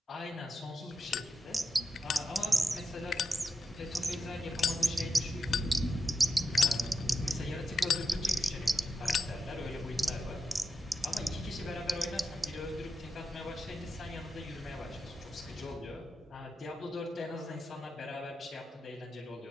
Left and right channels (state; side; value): normal; both; correlation 0.87